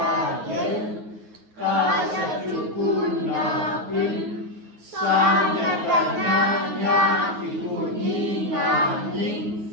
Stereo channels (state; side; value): late; left; 9.5 ms